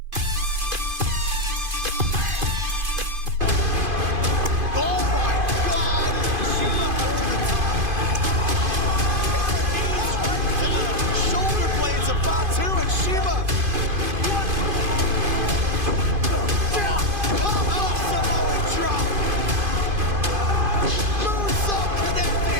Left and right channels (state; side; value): late; left; 2.5 ms